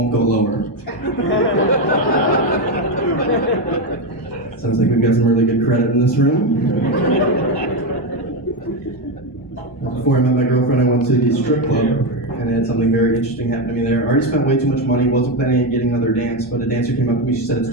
go lower. Sounds like we've got some really good credit in this room. Before I met my girlfriend, I went to the strip club, and I had something very interesting happen to me there. I already spent way too much money, wasn't planning on getting another dance, but a dancer came up to me, she said it's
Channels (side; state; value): both; normal; correlation 0.10